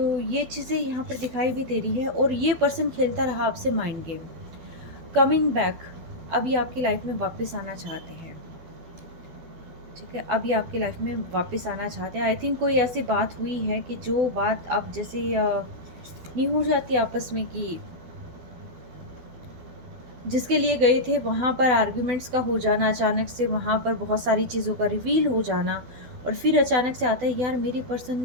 ये चीज़ें यहाँ पर दिखाई भी दे रही है, और ये पर्सन खेलता रहा आपसे माइंड गेम, कमिंग बैक, अभी आपकी लाइफ में वापस आना चाहते हैं, ठीक है, अभी आपकी लाइफ में वापस आना चाहते हैं। आई थिंक कोई ऐसी बात हुई है कि जो बात अब जैसे नहीं हो जाती आपस में, कि जिसके लिए गए थे वहाँ पर आर्ग्यूमेंट्स का हो जाना, अचानक से वहाँ पर बहुत सारी चीज़ों का रिवील हो जाना, और फिर अचानक से आता है यार मेरी पर्सन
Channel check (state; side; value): late; left; 12 ms